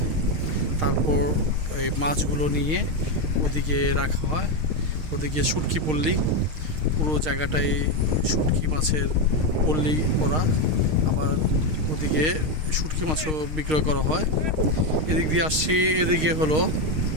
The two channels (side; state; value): left; late; 6.5 ms